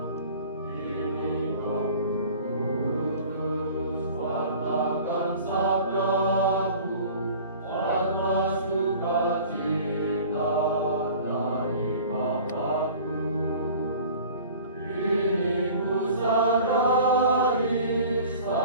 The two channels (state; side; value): inverted; both; correlation -0.45